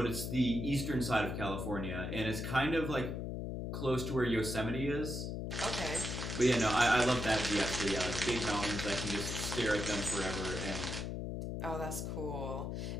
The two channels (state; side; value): noise; left; hum, 4 dB below the sound